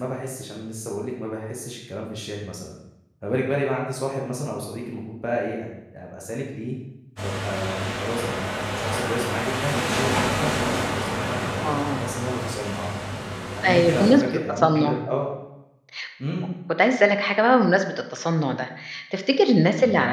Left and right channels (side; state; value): both; identical; correlation 1.00